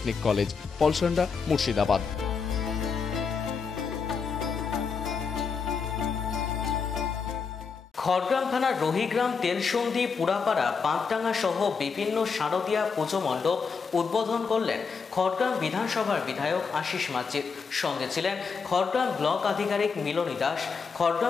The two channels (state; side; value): quieter; right; 5.5 dB